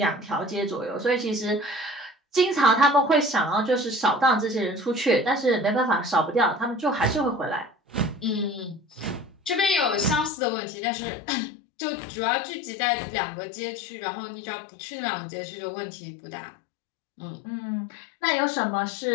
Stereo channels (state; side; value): drops out; right; at 10.3 s